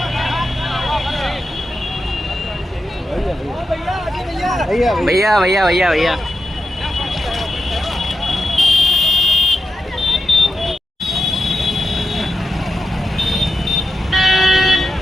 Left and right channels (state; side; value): normal; both; correlation 0.88